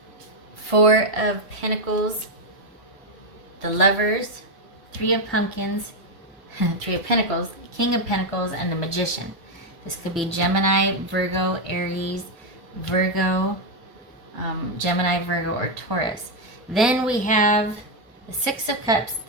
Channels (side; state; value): both; normal; correlation 0.04